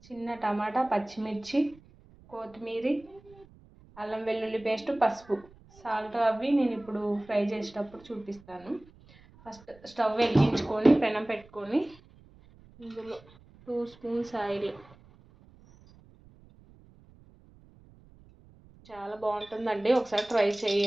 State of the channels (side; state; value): right; noise; rumble, 25 dB below the sound